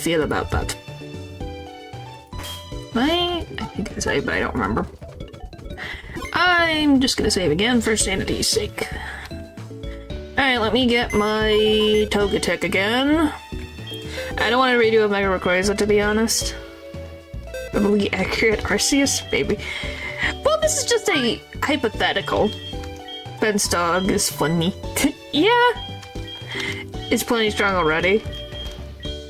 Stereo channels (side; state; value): both; identical; correlation 1.00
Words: about that. I think I saved, but I don't remember. I'm just gonna save again for sanity's sake. Alright, let me get my Togetic again. I don't want to redo a Mega Rayquaza, to be honest. Probably accurate Arceus, maybe. Well, this is just a hypothetical. Ben's dog is funny. Yeah! It's plenty strong already.